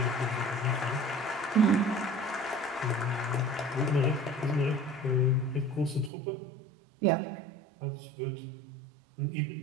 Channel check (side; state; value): left; drops out; at 6.1 s